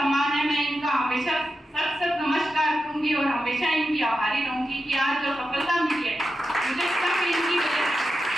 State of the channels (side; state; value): both; normal; correlation 0.90